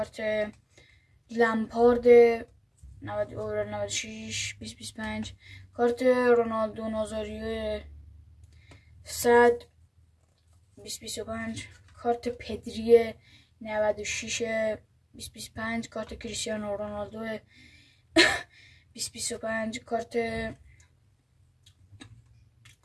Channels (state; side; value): identical; both; correlation 1.00